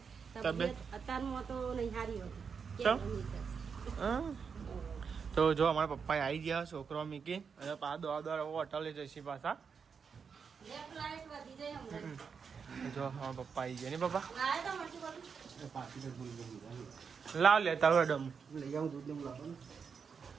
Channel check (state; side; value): quieter; left; 6.1 dB